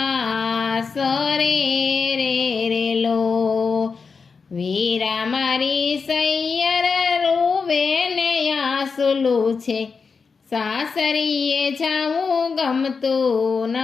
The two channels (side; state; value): right; quieter; 5.1 dB